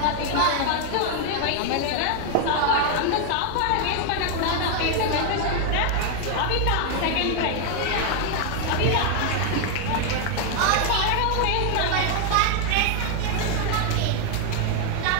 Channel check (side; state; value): both; different; correlation 0.01